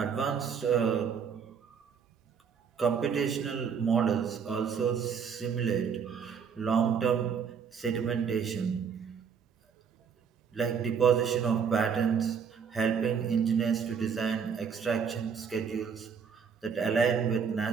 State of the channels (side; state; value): left; quieter; 6.7 dB